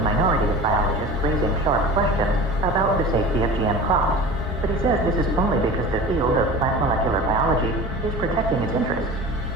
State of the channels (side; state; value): both; normal; correlation 0.36